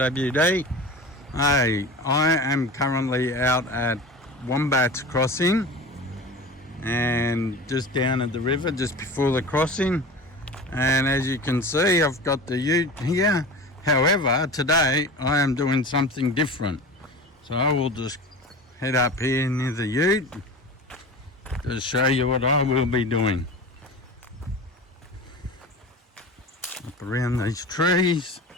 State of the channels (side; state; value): both; normal; correlation 0.33